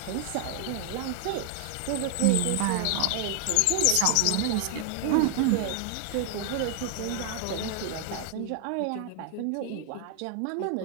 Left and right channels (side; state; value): both; different; correlation 0.00